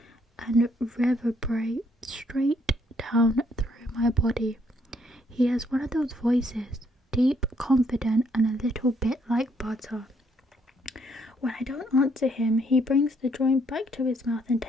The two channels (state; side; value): normal; both; correlation 0.70